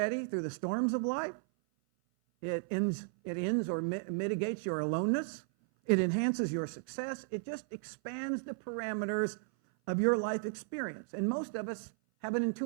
through the storms of life. It ends or mitigates your aloneness. It enhances your success. It just expands the parameters of your life experience. And most of us have an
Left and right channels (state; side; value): silent; left; 55 dB below the other